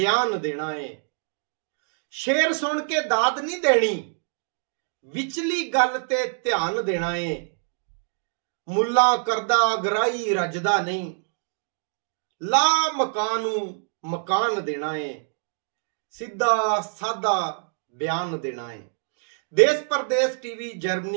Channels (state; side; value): silent; left; digital silence